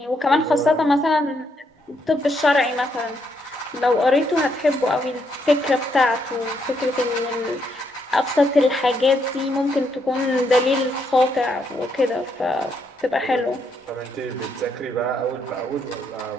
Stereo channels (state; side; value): normal; both; correlation 0.76